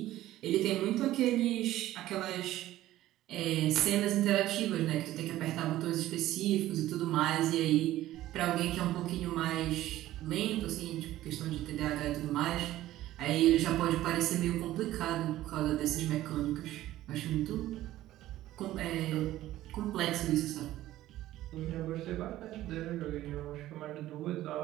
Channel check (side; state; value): left; quieter; 14.8 dB